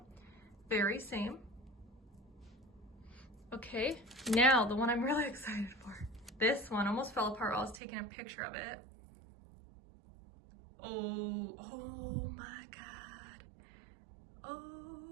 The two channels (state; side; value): drops out; left; at 7.8 s